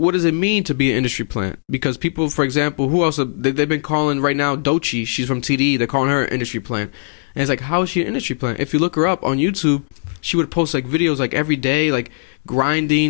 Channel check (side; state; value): right; silent; digital silence